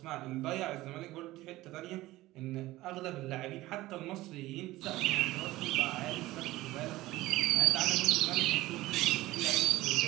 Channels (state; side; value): quieter; left; 17.6 dB